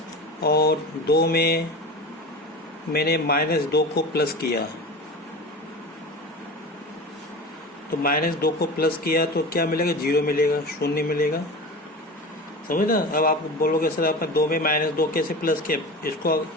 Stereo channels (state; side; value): normal; both; correlation 0.31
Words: और 2 में मैंने -2 को प्लस किया, तो -2 को प्लस किया तो क्या मिलेगा? 0 मिलेगा, 0 मिलेगा। समझ ना? अब आप बोलोगे सर आपने 2 में -2 कैसे प्लस किया?